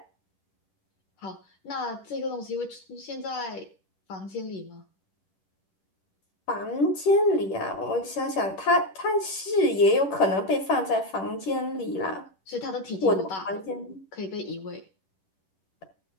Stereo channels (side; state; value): right; late; 10 ms